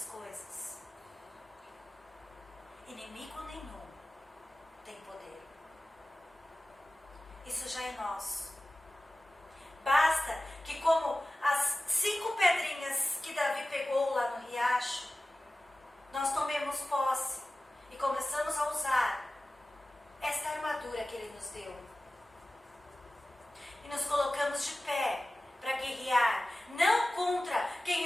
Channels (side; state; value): both; normal; correlation 0.96